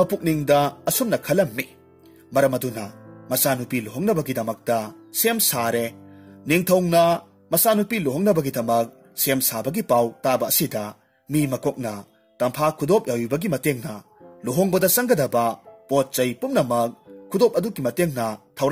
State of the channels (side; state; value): both; identical; correlation 1.00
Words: ꯑꯁꯨꯝꯅ ꯈꯜꯂꯝꯃꯤ꯫ ꯃꯔꯝ ꯑꯗꯨꯅ ꯃꯆꯥꯅꯨꯄꯤ ꯂꯨꯍꯣꯡꯅꯕꯒꯤꯗꯃꯛꯇ ꯁꯦꯝ ꯁꯥꯔꯦ꯫ ꯅꯤꯡꯊꯧꯅ ꯃꯆꯥꯅꯨꯄꯤ ꯂꯨꯍꯣꯡꯅꯕꯒꯤꯗꯃꯛ ꯁꯦꯝ ꯁꯥꯕꯒꯤ ꯄꯥꯎ ꯇꯥꯕ ꯑꯁꯤꯗ ꯃꯤ ꯃꯀꯣꯛꯅ ꯇꯝꯐꯥ ꯈꯨꯗꯣꯞ ꯌꯥꯎꯕꯒꯤ ꯃꯇꯦꯡꯅ ꯂꯨꯍꯣꯡꯕꯗ ꯆꯪꯒꯗꯕ ꯄꯣꯠ ꯆꯩ ꯄꯨꯝꯅꯃꯛ ꯈꯨꯗꯣꯞ ꯑꯗꯨꯒꯤ ꯃꯇꯦꯡꯅ